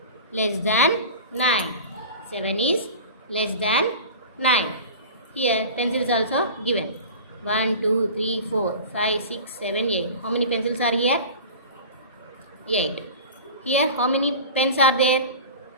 less than 9. 7 is less than 9. Here pencil is also given. 1, 2, 3, 4, 5, 6, 7, 8. How many pencils are here? 8. Here how many pens are there?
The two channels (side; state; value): both; inverted; correlation -0.35